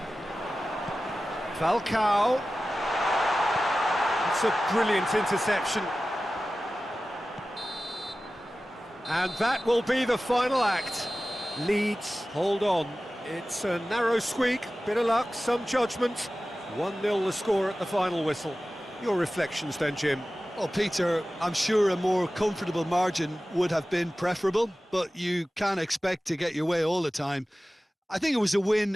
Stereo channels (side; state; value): both; normal; correlation 0.96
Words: Falcao. It's a brilliant interception. And that will be the final act. Leeds, hold on. It's a narrow squeak, bit of luck, some judgment. 1-0 the score at the final whistle. Your reflections then, Jim? Well, Peter, I'm sure a more comfortable margin would have been preferable, but you can't expect to get your way all the time. I think it was a